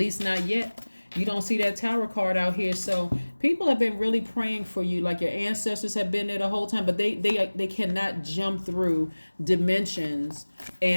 not yet. You don't see that Tower card out here. So people have been really praying for you, like your ancestors have been there the whole time, but they cannot jump through dimensions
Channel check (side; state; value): both; inverted; correlation -1.00